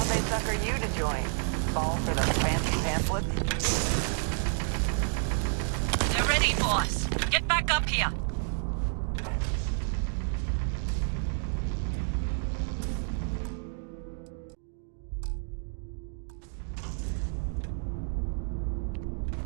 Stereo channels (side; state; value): left; silent; 58 dB below the other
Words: they sucker you to join? Fall for the fancy pamphlets? They're ready, boss. Get back up here.